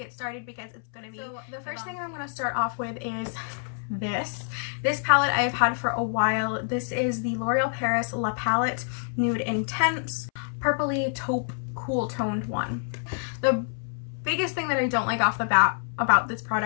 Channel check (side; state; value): right; silent; 60 dB below the other